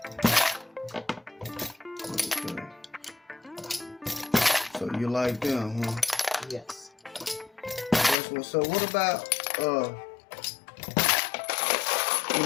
So you like them, huh? Yes. That's what's up. What about the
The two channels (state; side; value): drops out; right; at 8.2 s